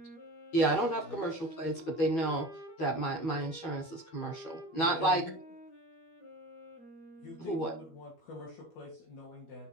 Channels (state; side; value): late; right; 12 ms